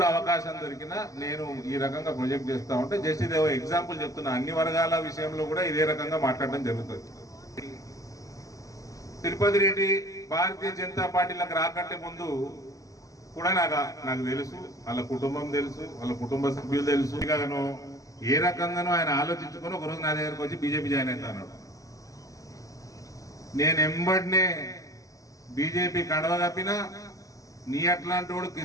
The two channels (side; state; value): right; late; 0.16 ms